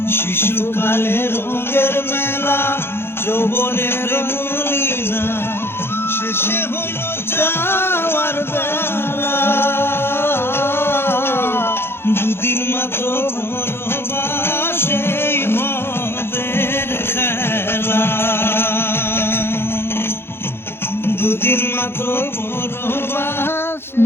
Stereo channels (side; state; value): right; late; 0.11 ms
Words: শিশুকালে রঙের মেলা যৌবনের লীলা শেষে হইল যাওয়ার বেলা দুদিন মাত্র ভালোবাসেই মদের খেলা দুদিন মাত্র পরবাস